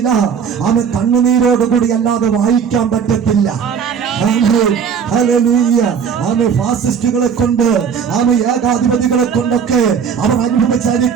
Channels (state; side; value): quieter; left; 6.9 dB